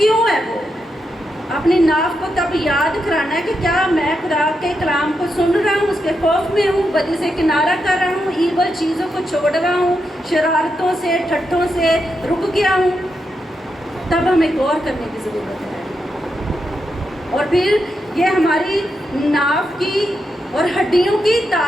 है वो? अपनी नाफ को तब याद कराना है कि क्या मैं खुदा के कलाम को सुन रहा हूँ, उसके खौफ में हूँ, बदी से किनारा कर रहा हूँ, ईवल चीज़ों को छोड़ रहा हूँ, शरारतों से ठट्ठों से रुक गया हूँ। तब हमें गौर करने की ज़रूरत है। और फिर ये हमारी नाफ की और हड्डियों की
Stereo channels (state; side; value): normal; both; correlation 0.84